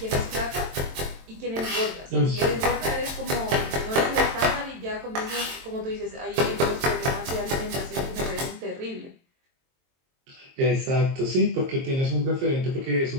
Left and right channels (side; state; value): left; late; 22 ms